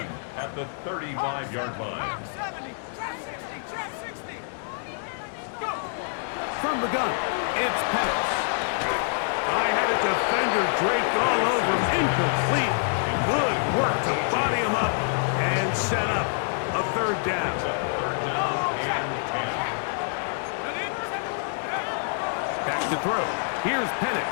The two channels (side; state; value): right; silent; digital silence